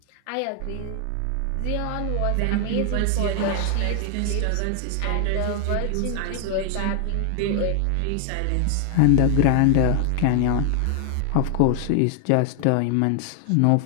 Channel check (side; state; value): both; different; correlation 0.00